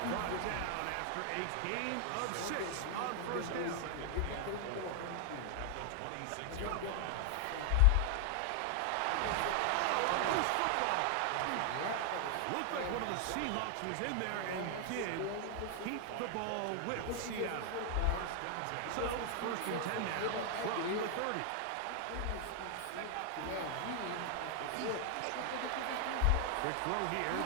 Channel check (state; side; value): different; both; correlation 0.00